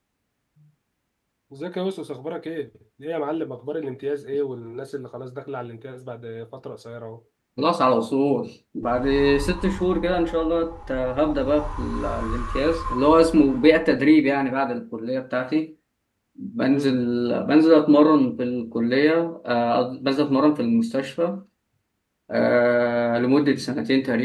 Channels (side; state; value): both; identical; correlation 1.00